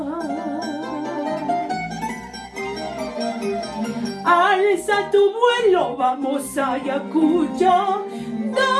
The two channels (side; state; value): both; identical; correlation 1.00